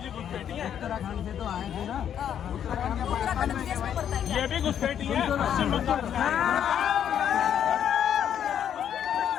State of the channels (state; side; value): quieter; right; 9.3 dB